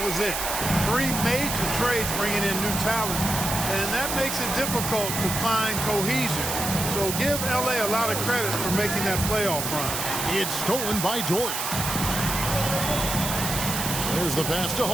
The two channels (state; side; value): noise; right; hiss, 3 dB below the sound